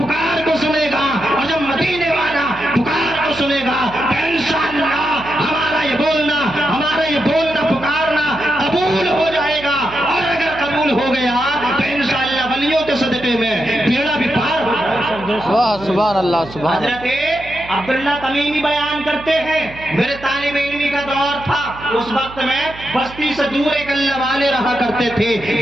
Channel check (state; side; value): noise; right; hum, 17 dB below the sound